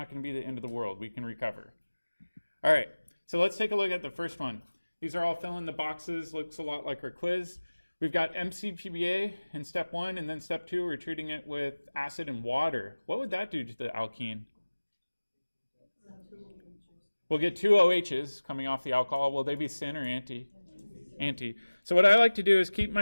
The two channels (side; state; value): both; inverted; correlation -1.00